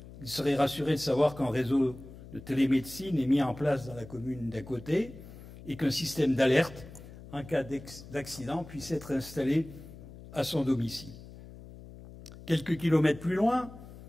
Il serait rassuré de savoir qu'un réseau de télémédecine est mis en place dans la commune d'à côté et qu'un système d'alerte en cas d'accident puisse être installé à son domicile. Quelques kilomètres plus loin,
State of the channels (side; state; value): left; noise; hum, 16 dB below the sound